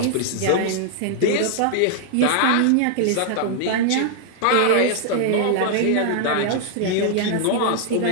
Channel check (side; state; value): both; different; correlation 0.00